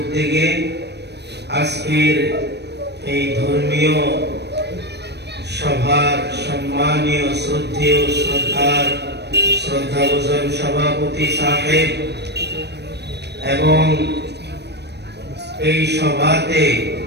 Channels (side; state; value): left; late; 0.49 ms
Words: আজকের এই ধর্মীয় সভার সম্মানীয় শ্রদ্ধেয় শ্রদ্ধাভাজন সভাপতি সাহেব এবং এই সভাতে